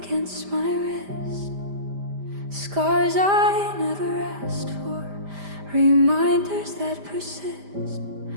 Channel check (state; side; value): late; left; 5.0 ms